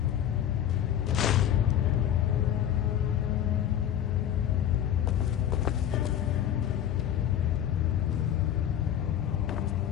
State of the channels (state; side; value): quieter; right; 10.4 dB